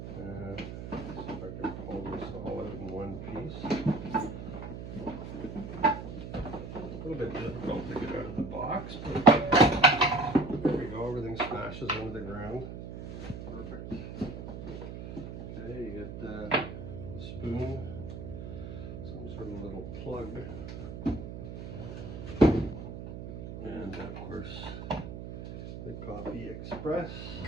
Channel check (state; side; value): noise; right; hum, 9 dB below the sound